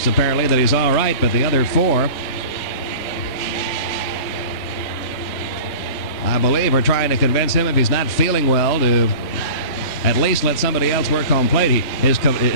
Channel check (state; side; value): late; right; 3.1 ms